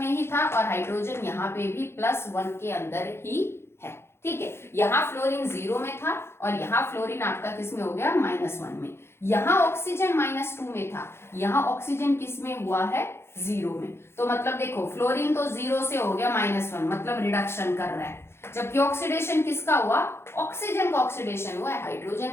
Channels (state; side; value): late; right; 0.12 ms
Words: ही था और हाइड्रोजन यहाँ पे भी +1 के अंदर ही है, ठीक है। यहाँ फ्लोरीन 0 में था और यहाँ फ्लोरीन आपका किस में हो गया -1 में। यहाँ ऑक्सीजन -2 में था, यहाँ ऑक्सीजन किस में हुआ है 0 में। तो मतलब देखो फ्लोरीन तो 0 से हो गया -1 मतलब रिडक्शन कर रहा है, जबकि ऑक्सीडेशन किसका हुआ, ऑक्सीजन का ऑक्सीडेशन हुआ है,